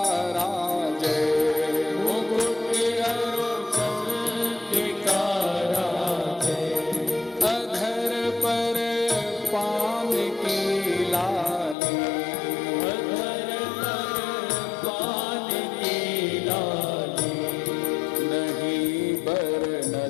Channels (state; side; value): drops out; right; at 11.8 s